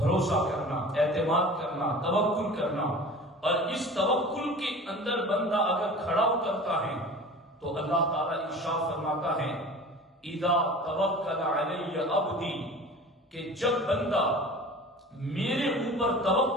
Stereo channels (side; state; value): both; normal; correlation 0.39